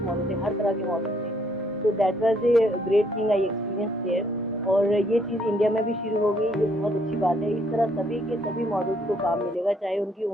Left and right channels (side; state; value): both; normal; correlation 0.68